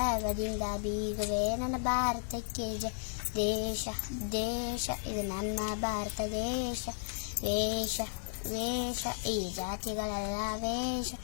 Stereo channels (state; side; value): silent; right; digital silence